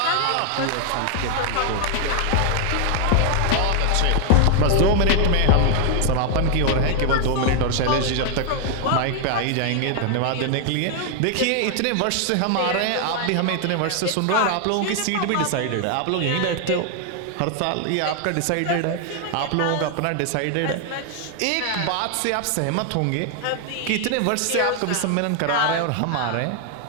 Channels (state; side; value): different; both; correlation 0.00